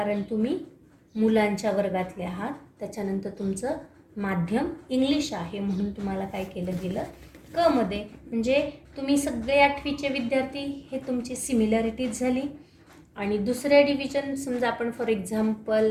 तुम्ही मुलांच्या वर्गातले आहात, त्याच्यानंतर तुमचं माध्यम इंग्लिश आहे म्हणून तुम्हाला काय केलं गेलं, क मध्ये. म्हणजे तुम्ही सगळे 8वीचे विद्यार्थी, हे तुमची सिमिलॅरिटीज झाली. आणि दुसऱ्या डिव्हिजन समजा आपण फॉर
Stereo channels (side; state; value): both; identical; correlation 1.00